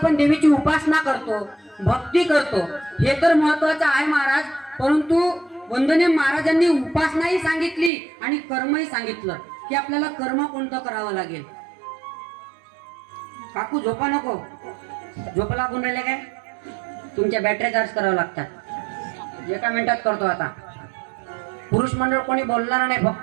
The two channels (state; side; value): drops out; left; at 7.9 s